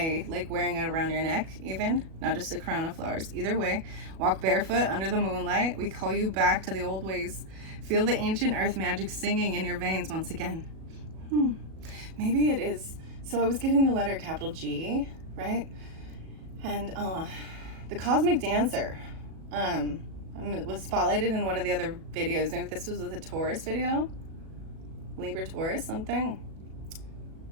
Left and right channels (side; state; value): left; late; 37 ms